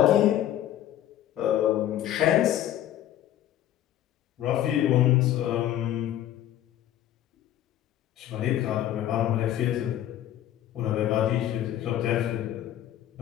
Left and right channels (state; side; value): quieter; right; 12.2 dB